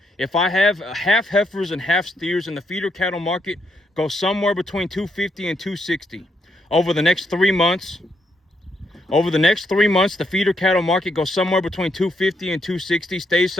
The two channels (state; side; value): normal; both; correlation 0.77